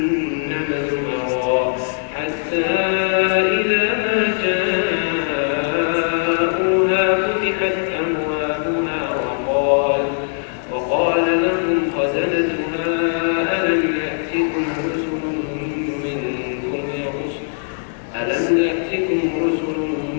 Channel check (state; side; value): silent; right; digital silence